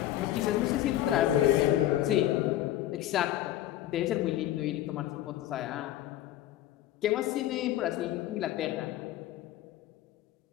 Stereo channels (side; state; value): right; quieter; 13.4 dB